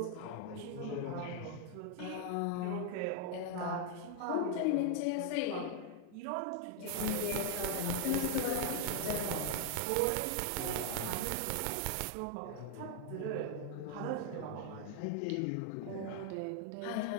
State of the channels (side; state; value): both; different; correlation 0.00